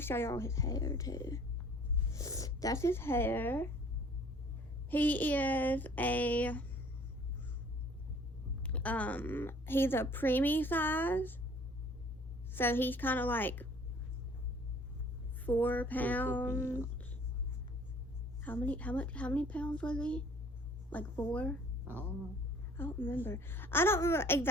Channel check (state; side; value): normal; both; correlation 0.54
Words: to show y'all his hair too. That's his hair. He is he's a preemie size. So he's kind of like 4 pounds. How many pounds was he? Like 4? I don't know. I don't remember. I don't